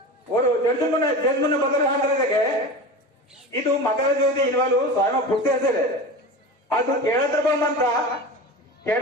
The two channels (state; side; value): normal; both; correlation 0.30